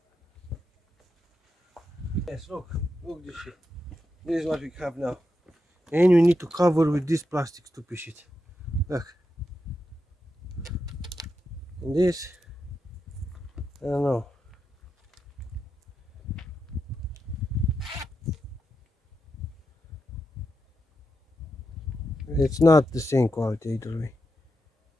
Yes, look this shit. This is what we have now. And you need to cover with this plastic stupid shit. Look. And this, I don't know. It's not the same quality either way.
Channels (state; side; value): normal; both; correlation 0.86